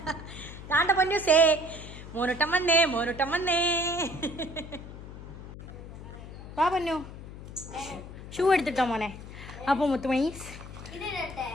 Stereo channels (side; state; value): left; noise; hum, 13 dB below the sound